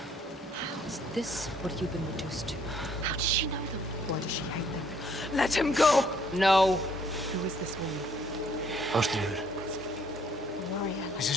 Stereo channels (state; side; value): normal; both; correlation 0.64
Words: Is this what you've been reduced to? How does she know them? Why does she hate them? Let him go! No. Who is this woman? Ástríður, Warrior. this